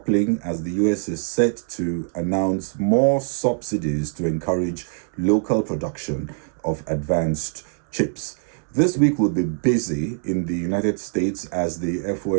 as the US is set to announce more subsidies to encourage local production of advanced chips. This week will be busy in the United States as the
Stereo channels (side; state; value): left; silent; 63 dB below the other